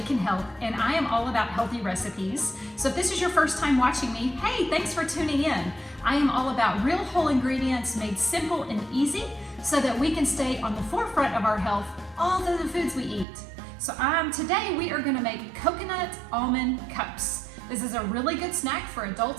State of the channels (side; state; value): left; drops out; at 13.2 s